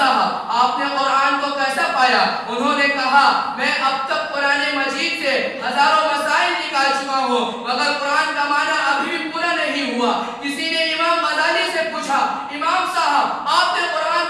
آپ نے قرآن کو کیسا پایا؟ انہوں نے کہا میں اب تک قرآن مجید سے ہزاروں مسائل نکال چکا ہوں مگر قرآن کا معنی ابھی بھی پورا نہیں ہوا. کسی نے امام غزالی سے پوچھا، امام صاحب آپ نے قرآن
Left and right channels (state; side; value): identical; both; correlation 1.00